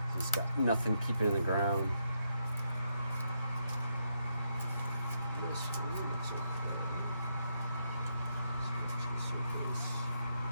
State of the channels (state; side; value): inverted; both; correlation -0.80